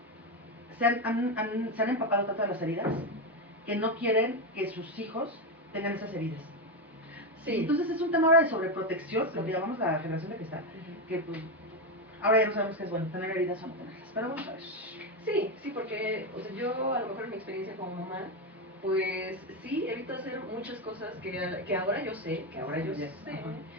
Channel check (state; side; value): normal; both; correlation 0.10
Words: se han empapado tanto de las heridas que no quieren que sus hijos tengan esas heridas. Sí. Entonces es un tema ahora de sobreprotección, lo que llamamos la generación de cristal, que pues ahora ya no sabemos qué es bueno, tener heridas o no tenerlas, pero vamos a ver. Sí, porque, o sea, yo a lo mejor en mi experiencia como mamá, pues sí, evito hacer muchas cosas que ahora yo sé,